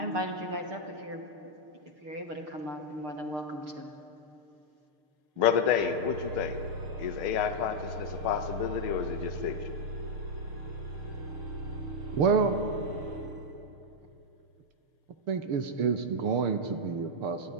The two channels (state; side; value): late; left; 6.6 ms